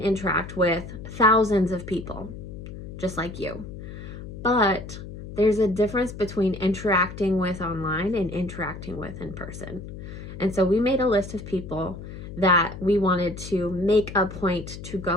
with thousands of people, just like you. But there's a difference between interacting with online and interacting with in person. And so we made a list of people that we wanted to make a point to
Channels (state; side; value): noise; left; hum, 11 dB below the sound